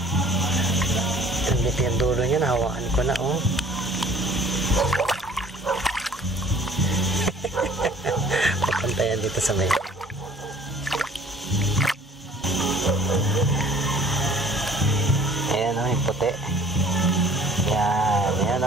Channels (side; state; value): both; normal; correlation 0.53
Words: Dito yung dulo niya, nahawakan ko na. Oh. Pupunta yan dito sa may. Ayan yung puti. Yan